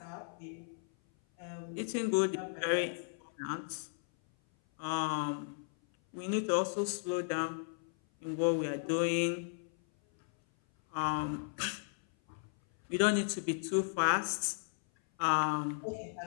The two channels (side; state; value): right; silent; 54 dB below the other